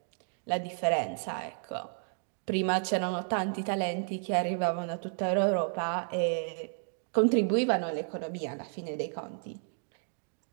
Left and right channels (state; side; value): silent; left; 56 dB below the other